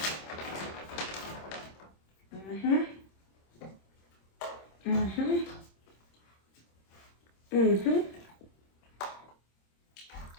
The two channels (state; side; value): late; right; 26 ms